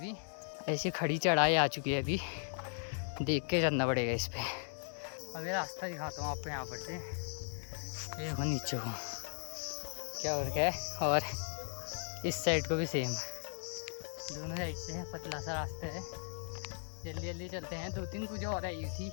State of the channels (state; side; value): silent; right; digital silence